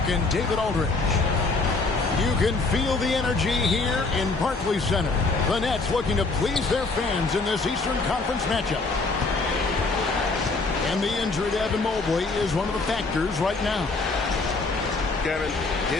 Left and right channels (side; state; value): right; quieter; 3.7 dB